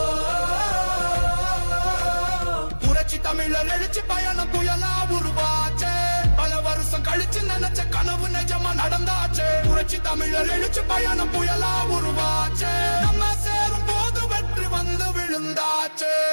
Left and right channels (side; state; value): both; inverted; correlation -1.00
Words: புரட்சி தமிழர் எழுச்சி பயணம் புயலா உருவாச்சே, பல வருஷம் கழிச்சு நினைச்ச கனவு நிஜமா நடந்தாச்சே. புரட்சி தமிழர் எழுச்சி பயணம் புயலா உருவாச்சே, நம்ம சேரும் போது வெற்றி வந்து விழுந்தாச்சே.